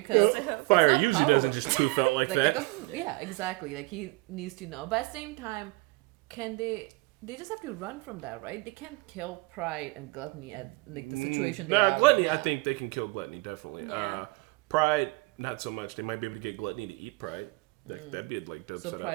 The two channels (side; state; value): left; quieter; 24.1 dB